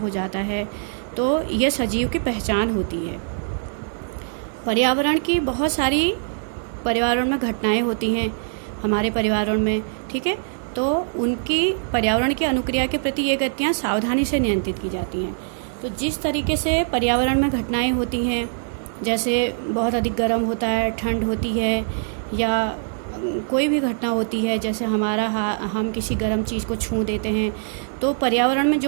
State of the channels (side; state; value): left; silent; digital silence